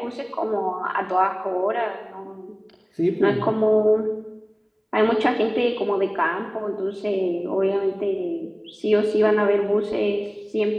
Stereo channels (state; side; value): identical; both; correlation 1.00